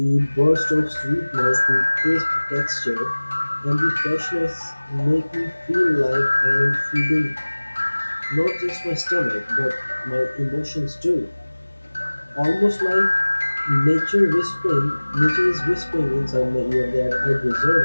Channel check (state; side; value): inverted; both; correlation -1.00